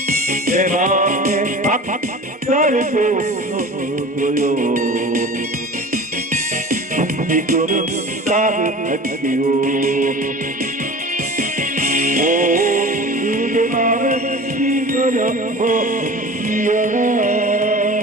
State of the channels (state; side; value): normal; both; correlation 0.37